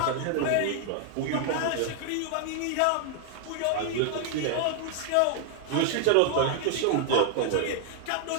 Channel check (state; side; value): different; both; correlation 0.00